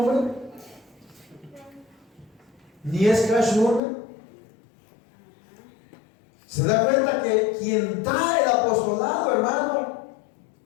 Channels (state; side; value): drops out; right; at 3.8 s